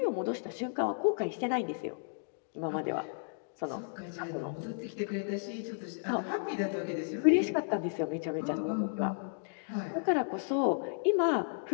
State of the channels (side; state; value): right; silent; digital silence